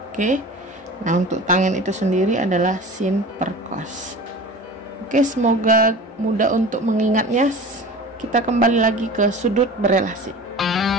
Oke. Nah, untuk tangen itu sendiri adalah sin per cos. Oke, semoga mudah untuk mengingatnya. Kita kembali lagi ke sudut berelasi.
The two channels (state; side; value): normal; both; correlation 0.37